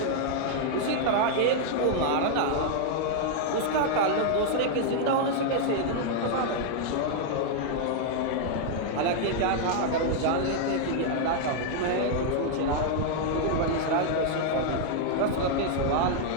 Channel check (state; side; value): different; both; correlation -0.01